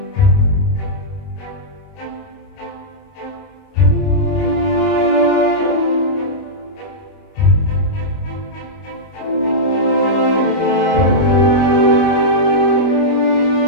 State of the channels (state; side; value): late; right; 29 ms